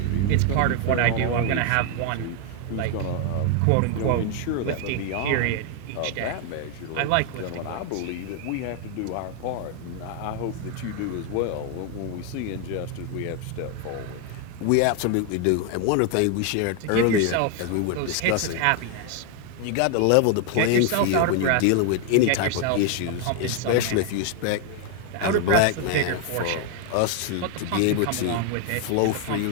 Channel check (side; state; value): both; different; correlation 0.01